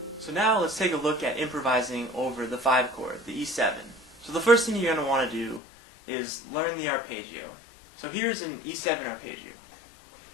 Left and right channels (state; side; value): drops out; right; at 5.6 s